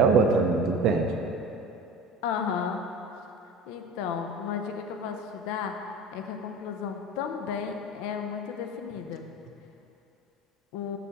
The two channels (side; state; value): both; normal; correlation 0.34